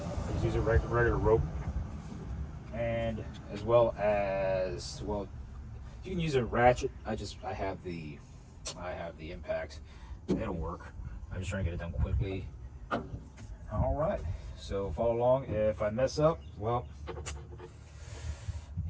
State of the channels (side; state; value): both; identical; correlation 1.00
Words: Just use a regular rope, and as well, you can use a ratchet. I have the impact. It'll work. I'm just trying to get it done quickly. All right, so follow along. If I mess up, well,